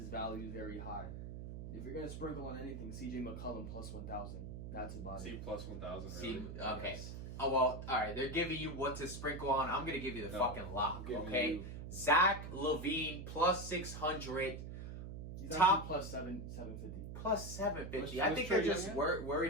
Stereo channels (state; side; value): noise; right; hum, 8 dB below the sound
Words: value is very high. If you're gonna sprinkle on anything, CJ McCollum plus 1000. That's about See it. plus 1,000. See, Really? okay. Yes. Oh well, all right. They're giving you what to sprinkle on. I'm gonna give you the No, fucking lock. I'm giving Okay. you- Zach LaVine plus 600, He's Top- actually plus 750. plus 750. What's I think Trae they're just Young